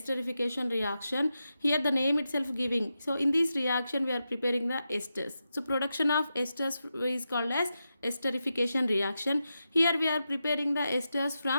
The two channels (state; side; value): inverted; both; correlation -0.88